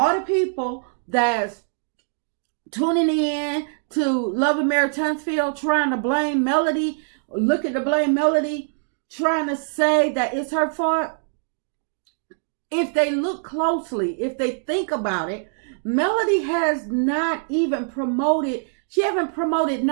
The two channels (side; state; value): left; silent; digital silence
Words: the people that's tuning in to Love and Marriage Huntsville, trying to blame Melody, looking to blame Melody, trying to say that it's her fault, if they look closely, if they think about it, Melody has not even promoted, she haven't promoted